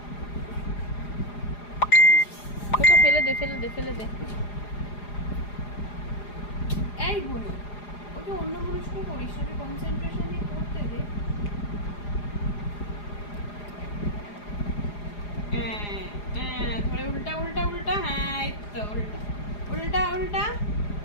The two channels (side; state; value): right; late; 4.9 ms